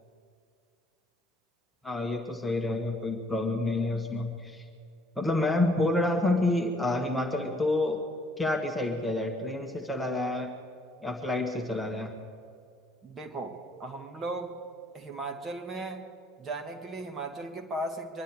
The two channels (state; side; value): normal; both; correlation 0.65